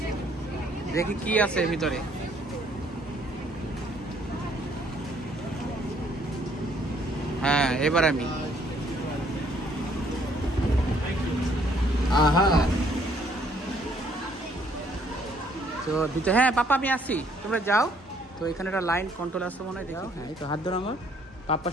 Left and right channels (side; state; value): both; normal; correlation 0.64